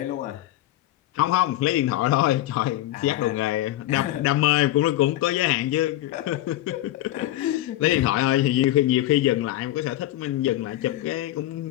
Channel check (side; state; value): right; quieter; 14.8 dB